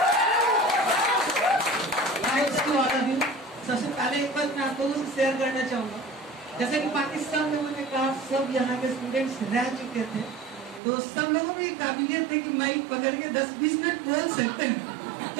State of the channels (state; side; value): drops out; left; at 10.8 s